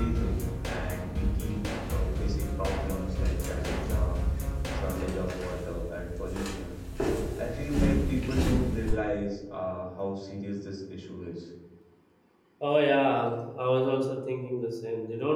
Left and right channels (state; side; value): identical; both; correlation 1.00